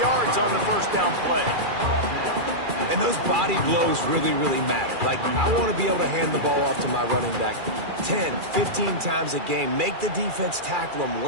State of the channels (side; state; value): left; late; 2.4 ms